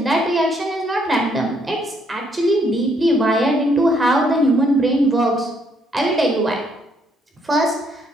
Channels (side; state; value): both; normal; correlation 0.70